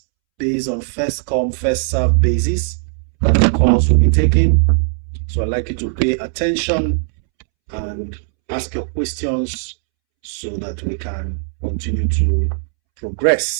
based on first come, first serve basis that the calls will be taken. So I'd like you to pay attention and ask your questions so that we can continue to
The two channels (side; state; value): left; silent; 67 dB below the other